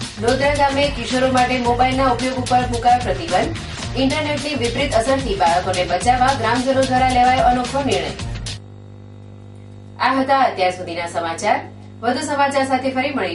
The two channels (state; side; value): identical; both; correlation 1.00